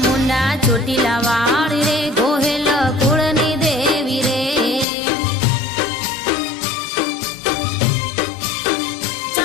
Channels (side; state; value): right; drops out; at 4.9 s